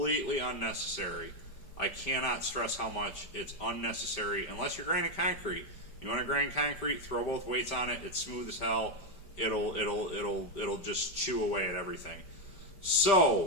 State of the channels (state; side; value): late; right; 5.1 ms